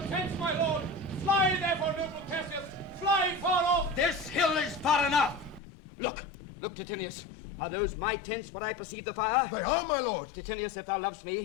tents, my lord! Fly, therefore, noble Cassius! Fly far off! This hill is far enough. Look, Titinius. Are those my tents where I perceive the fire? They are, my lord. Titinius, if thou lovest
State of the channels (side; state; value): right; drops out; at 5.6 s